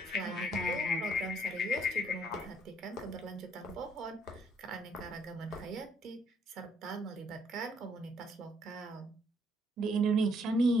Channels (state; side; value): normal; both; correlation 0.68